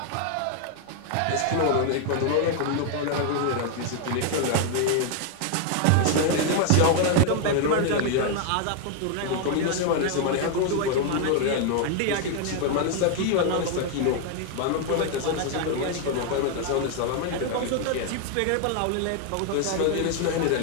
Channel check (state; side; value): different; both; correlation 0.00